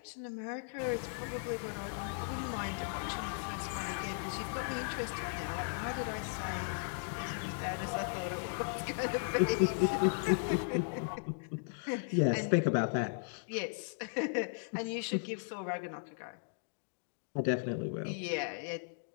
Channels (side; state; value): right; silent; digital silence